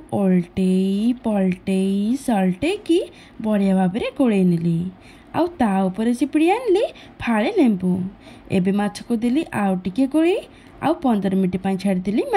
ओल्टेई पलटेई सल्टेकी बढ़िया भाव में गोलई नेली आउ ता ऊपर चिपिड़ी आनली फाळे लेंबू एबे माछ को देली आउ टिके गोलई आउ 15 मिनिट पाई छाड़देली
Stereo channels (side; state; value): both; identical; correlation 1.00